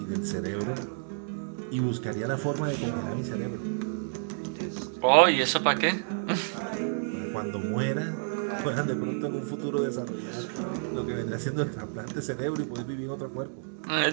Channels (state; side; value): silent; left; digital silence